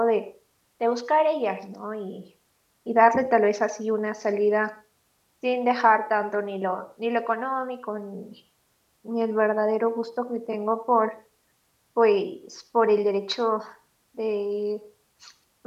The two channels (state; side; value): identical; both; correlation 1.00